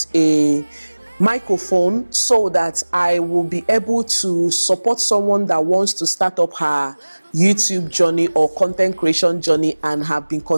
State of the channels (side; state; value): both; inverted; correlation -1.00